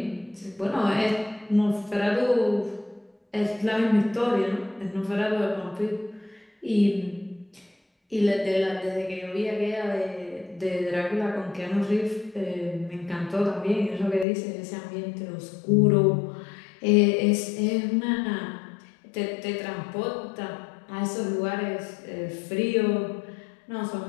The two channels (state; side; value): drops out; right; at 14.2 s